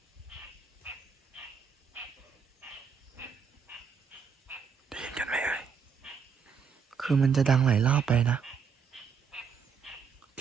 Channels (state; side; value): quieter; left; 6.3 dB